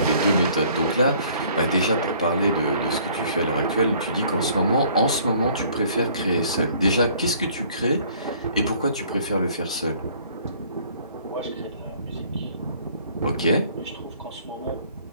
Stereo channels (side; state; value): both; inverted; correlation -0.57